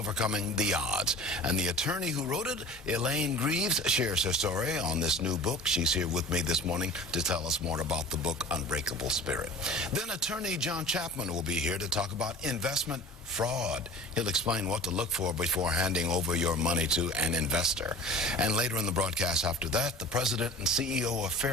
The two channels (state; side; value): normal; both; correlation 0.40